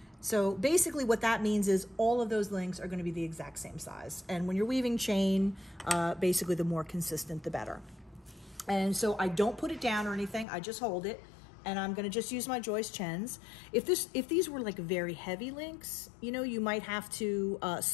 So basically what that means is all of those links are going to be the exact same size. And when you're weaving chain, basically the more consistent, the better. And so I don't put it down or anything, I just hold it, and I'm gonna just use my joist chens. If these were like very heavy links, you know, you might have to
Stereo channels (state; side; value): drops out; right; at 10.5 s